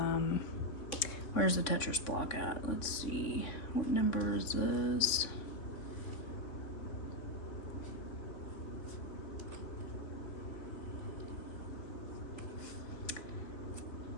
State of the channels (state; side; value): late; right; 3.6 ms